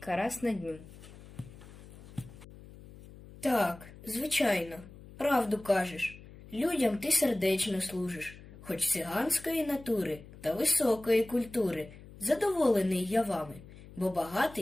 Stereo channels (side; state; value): left; noise; hum, 18 dB below the sound